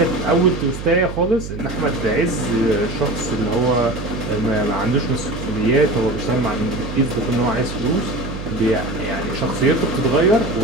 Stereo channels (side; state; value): right; noise; hum, 9 dB below the sound